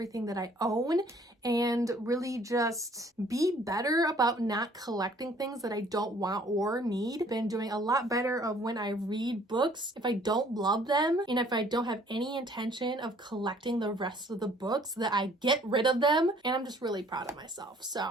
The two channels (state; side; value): normal; both; correlation 0.58